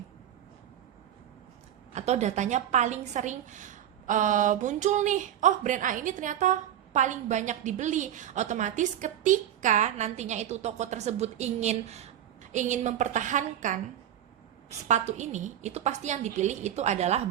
atau datanya paling sering muncul nih, oh brand A ini ternyata paling banyak dibeli. Otomatis ketika nantinya itu toko tersebut ingin mempertahankan sepatu ini, itu pasti yang dipilih itu adalah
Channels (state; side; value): quieter; left; 11.0 dB